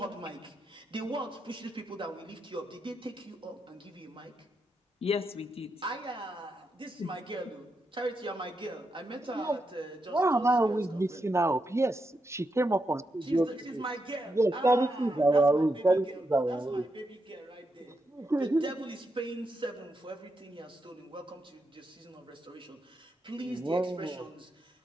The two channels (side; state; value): both; normal; correlation 0.84